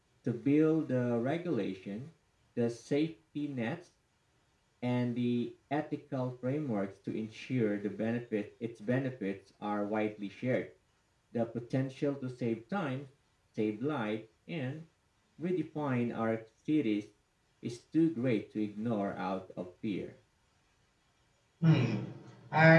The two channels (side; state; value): both; identical; correlation 1.00